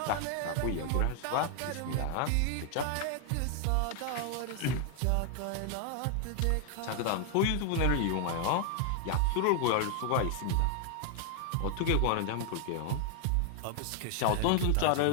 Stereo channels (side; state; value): both; different; correlation 0.00